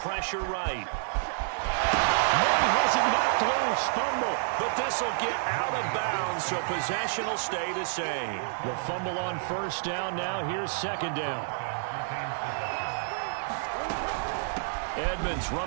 right. Murray has it knocked loose. Fumble. But this will get out of bounds, so possession will stay the same. The fumble on 1st down now. Here's 2nd down. Edmonds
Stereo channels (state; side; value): silent; left; digital silence